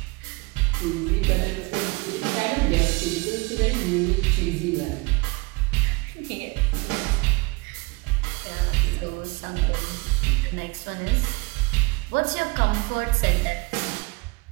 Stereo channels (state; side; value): quieter; left; 26.5 dB